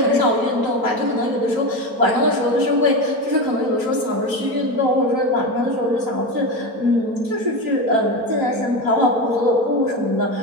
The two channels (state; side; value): late; left; 4.4 ms